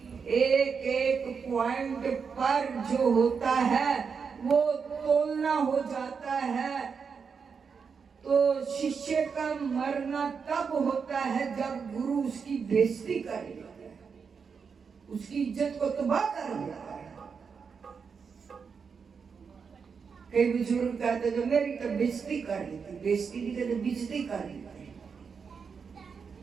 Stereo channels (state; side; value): quieter; left; 5.9 dB